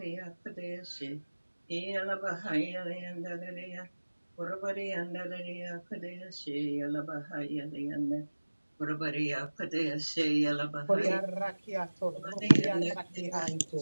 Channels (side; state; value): both; inverted; correlation -1.00